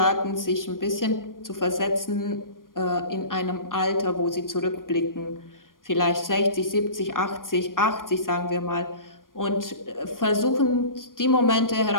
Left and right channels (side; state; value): right; late; 0.90 ms